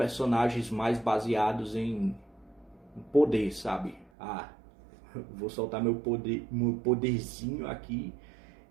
mais baseados em poder, sabe? Vou soltar meu poderzinho aqui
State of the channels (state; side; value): drops out; left; at 4.1 s